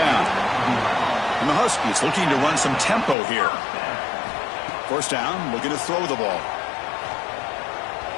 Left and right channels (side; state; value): right; drops out; at 3.2 s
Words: And the Huskies looking to run some tempo here. First down, looking to throw the ball.